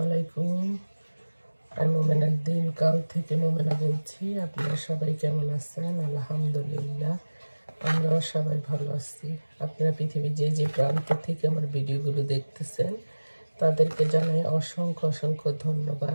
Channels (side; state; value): both; inverted; correlation -1.00